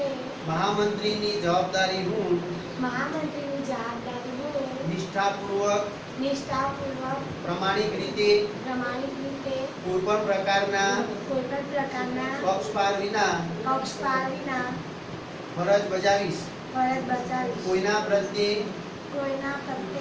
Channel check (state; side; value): identical; both; correlation 1.00